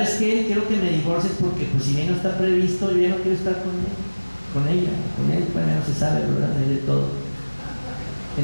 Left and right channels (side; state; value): both; inverted; correlation -1.00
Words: qué? Quiero que me divorcies porque pues si bien no está previsto, yo ya no quiero estar con él, con ella, con él, pues no se sabe, ¿verdad? De todo.